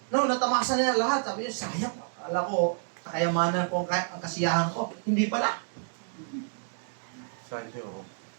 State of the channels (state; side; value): silent; left; digital silence